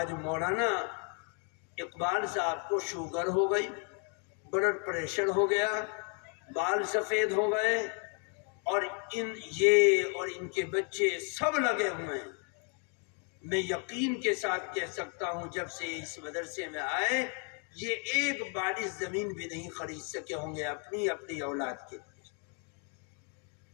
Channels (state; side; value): quieter; right; 38.6 dB